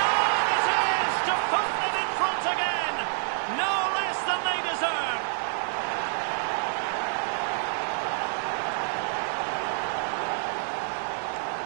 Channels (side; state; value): left; silent; 59 dB below the other